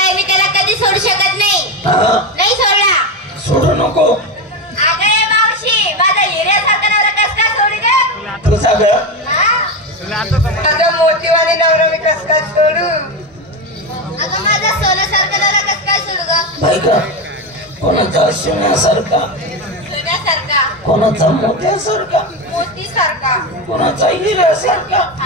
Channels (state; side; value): normal; both; correlation 0.15